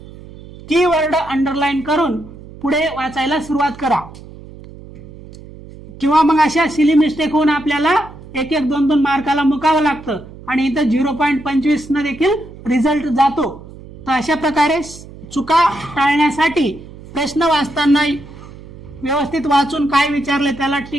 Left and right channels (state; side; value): noise; right; hum, 17 dB below the sound